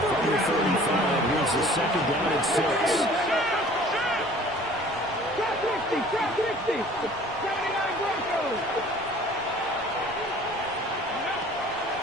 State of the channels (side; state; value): left; noise; rumble, 24 dB below the sound